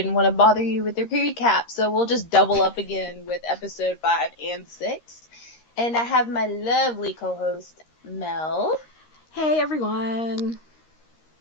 want to bother you with the recap, so we'll just double up again with episode 5 and 6. And I have my lovely co-host, Mel. Hey, everyone.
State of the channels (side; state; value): right; late; 13 ms